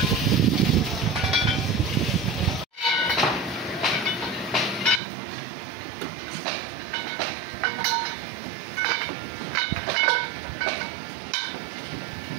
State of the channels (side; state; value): left; drops out; at 5.0 s